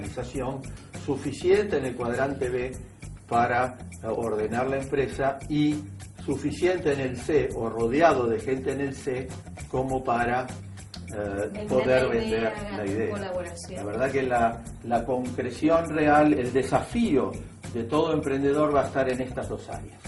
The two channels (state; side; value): identical; both; correlation 1.00